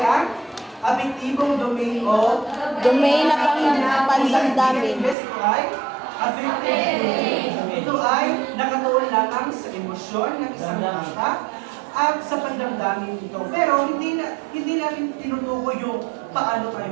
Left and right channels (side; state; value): left; drops out; at 5.2 s